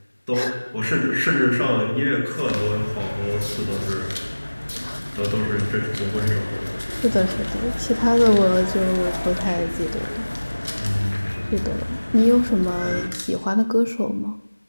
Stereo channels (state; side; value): inverted; both; correlation -1.00